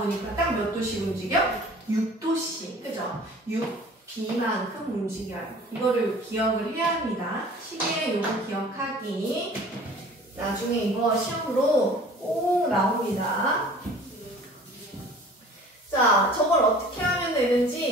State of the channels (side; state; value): both; normal; correlation 0.47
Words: 딱 몇 도씩 움직여? 6도씩. 그죠? 6B만큼 움직여요. 이거를 기억을 해야 합니다. 시계의 요거 기억하기. 나중에 이거 시험으로 꼭 나옵니다. 자, 저걸 어떻게 하면